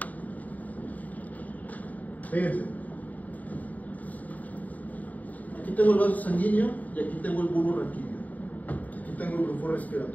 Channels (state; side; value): late; right; 0.075 ms